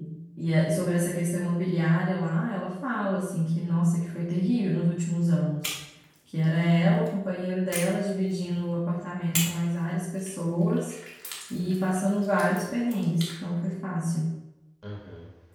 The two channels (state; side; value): identical; both; correlation 1.00